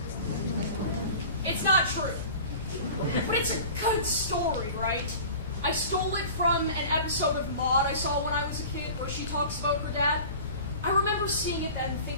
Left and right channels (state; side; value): inverted; both; correlation -0.40